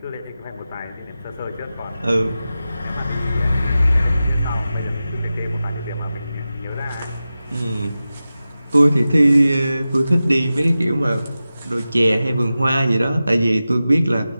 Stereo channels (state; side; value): inverted; both; correlation -0.94